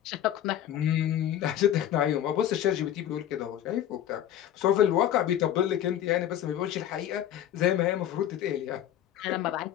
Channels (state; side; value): quieter; right; 11.2 dB